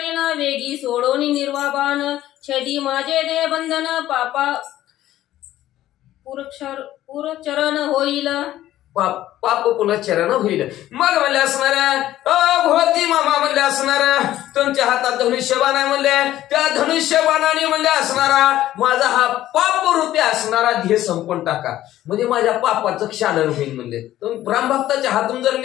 वेगी सोडोनी निर्वाबान, छेदी माझे दे बंधन, पापा पुरचरण होईल. पाप पुनश्चरण होईल. मग म्हणले असणाऱ्या भोवती मामा म्हणले असणाऱ्या तुमच्या हातात धनुष्यबाण आहे म्हणले, त्या धनुष्यबाणाने म्हणले असणारा माझा हा पाप रूपी असणारा ध्येय संपून टाका, म्हणजे माझ्या पापाचं क्षालन होईल म्हणले. रामभक्ताच्या हातून जर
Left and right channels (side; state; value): right; quieter; 13.8 dB